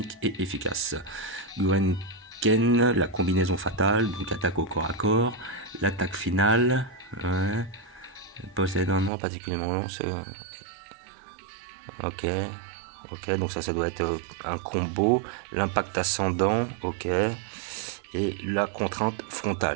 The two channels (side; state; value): left; drops out; at 9.1 s